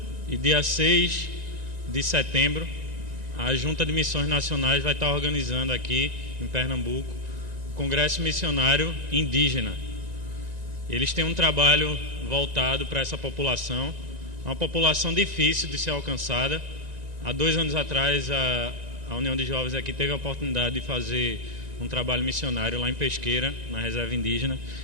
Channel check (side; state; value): left; late; 1.9 ms